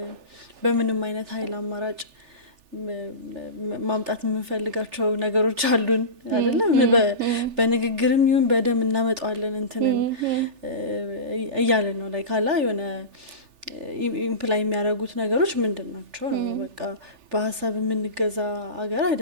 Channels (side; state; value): left; late; 3.4 ms